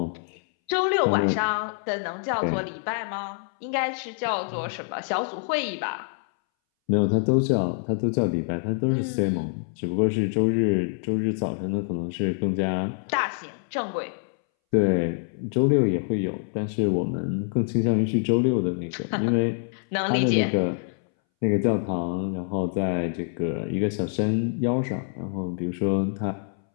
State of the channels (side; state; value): right; silent; 61 dB below the other